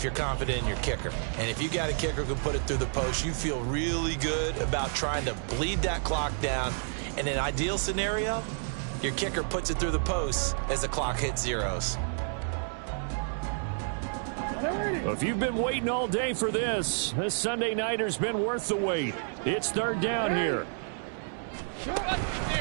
you're confident in your kicker. And if you got a kicker who can put it through the post, you feel really good about trying to bleed that clock down. In an ideal scenario, your kicker puts it through the post as the clock hits zeros. If you've been waiting all day for this Sunday nighter's been worth the wait. It's 3rd down here.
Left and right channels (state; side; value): silent; left; 58 dB below the other